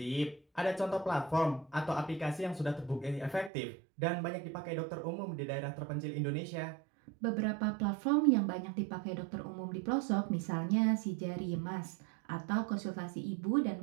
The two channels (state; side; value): drops out; left; at 3.5 s